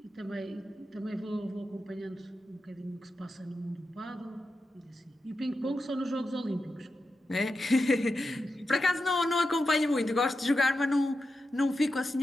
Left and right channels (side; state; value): both; normal; correlation 0.90